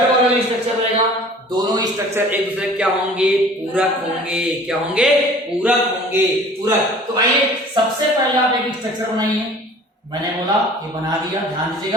वाला भी स्ट्रक्चर रहेगा, दोनों स्ट्रक्चर एक दूसरे क्या होंगे, पूरक होंगे। क्या होंगे, पूरक होंगे, पूरक। तो आइए सबसे पहले आप एक स्ट्रक्चर बनाइए। मैंने बोला ये बना दिया, ध्यान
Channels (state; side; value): normal; both; correlation 0.47